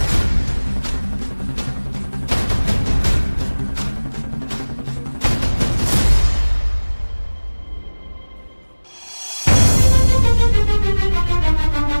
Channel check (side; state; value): both; inverted; correlation -1.00